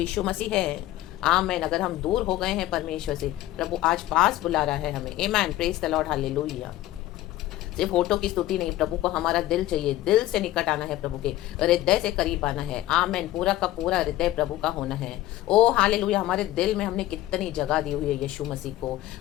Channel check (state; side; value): quieter; right; 15.2 dB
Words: मसीह है। आमेन। अगर हम दूर हो गए हैं परमेश्वर से, प्रभु आज पास बुला रहा है हमें। आमेन, प्रेज द लॉर्ड, हालेलुया। सिर्फ होठों की स्तुति नहीं, प्रभु को हमारा दिल चाहिए, दिल से निकट आना है, प्रभु के हृदय से करीब आना है। आमेन, पूरा का पूरा हृदय प्रभु का होना है। ओ हालेलुया। हमारे दिल में हमने कितनी जगह दी हुई है यीशु मसीह को,